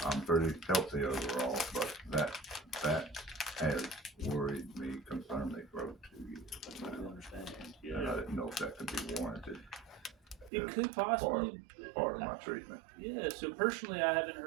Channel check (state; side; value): drops out; left; at 10.5 s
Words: I'm pretty healthy overall, but that has worried me, concerned me for over 2 years. I understand. Yeah. And I didn't know if that could be warranted. It could possibly part of my treatment. Yeah. So personally, I haven't